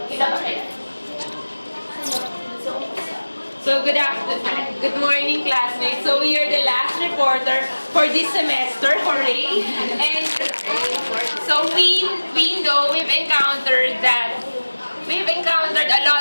So, good afternoon. Good morning, classmates. So, we are the last reporter for this semester, hooray! And so, we know we've encountered a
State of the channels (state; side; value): inverted; both; correlation -1.00